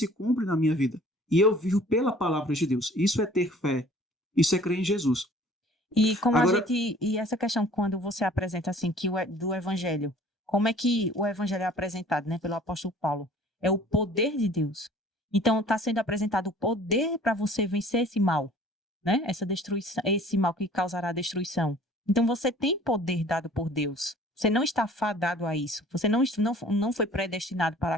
cumpre na minha vida e eu vivo pela palavra de Deus. Isso é ter fé, isso é crer em Jesus. E como e essa questão quando você apresenta assim do evangelho, como é que o evangelho é apresentado, né, pelo apóstolo Paulo? É o poder de Deus. Então está sendo apresentado o poder para você vencer esse mal, né? Essa destruição, esse mal que causará a destruição. Então você tem poder dado por Deus. Você não está fadado a isso. Você não foi predestinado para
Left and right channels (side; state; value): both; normal; correlation 0.51